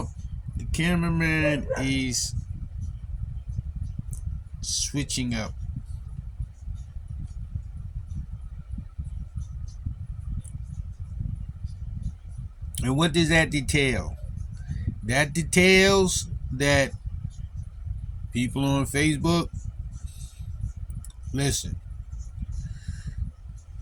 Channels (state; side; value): identical; both; correlation 1.00